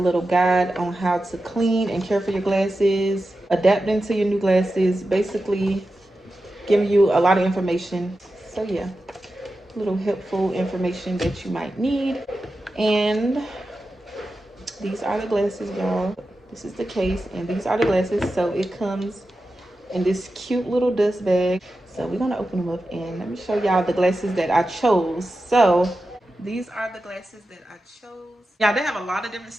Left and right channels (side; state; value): both; normal; correlation 0.92